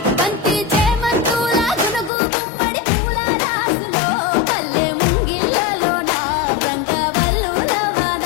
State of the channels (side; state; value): right; drops out; at 2.1 s